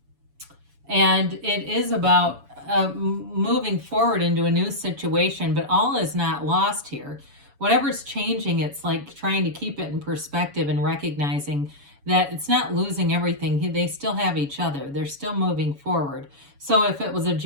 And it is about moving forward into a new situation, but all is not lost here. Whatever's changing, it's like trying to keep it in perspective and recognizing that it's not losing everything. They still have each other. They're still moving forward. So if it was a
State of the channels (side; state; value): left; late; 7.1 ms